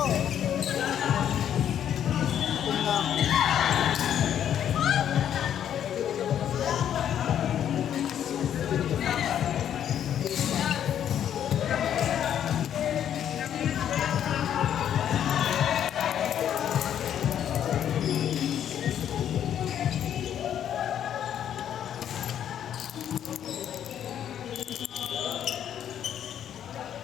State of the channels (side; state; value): right; quieter; 9.8 dB